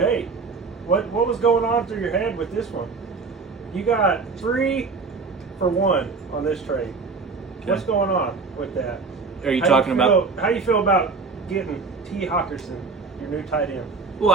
What was going on through your head with this one? You got 3 for 1 on this trade. Okay. What's going on with that? Are you talking about? How you feel about getting T. Hawkinson, your new tight end?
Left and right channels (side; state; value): left; quieter; 4.5 dB